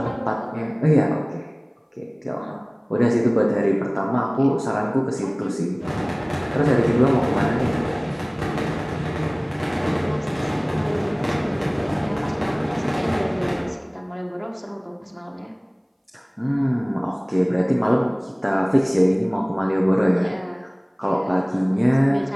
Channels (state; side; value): identical; both; correlation 1.00